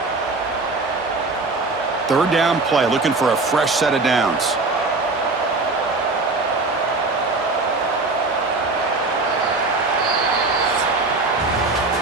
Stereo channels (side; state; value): left; quieter; 3.5 dB